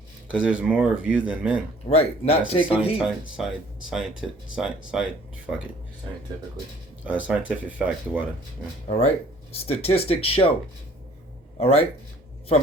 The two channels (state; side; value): normal; both; correlation 0.55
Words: Because there's more of you than men. Right. Not taking heed. Scientifically. Scientific fact, the water. Yeah. All right. Statistics show. All right.